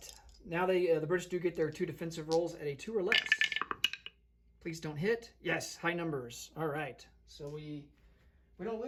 now the British do get their 2 defensive rolls at a 2 or less. Please don't hit. Yes, high numbers. All right, so we don't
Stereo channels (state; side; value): identical; both; correlation 1.00